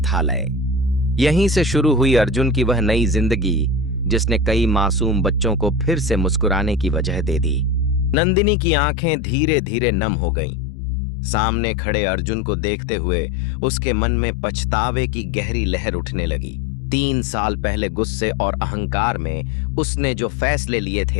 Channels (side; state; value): right; drops out; at 8.2 s